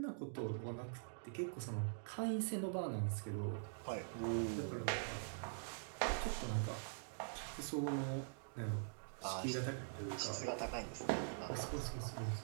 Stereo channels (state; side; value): silent; left; digital silence